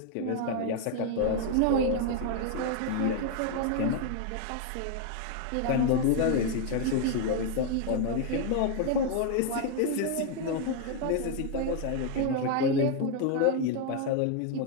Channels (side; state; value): both; different; correlation 0.00